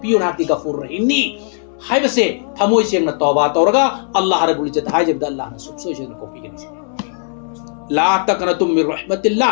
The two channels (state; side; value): silent; right; digital silence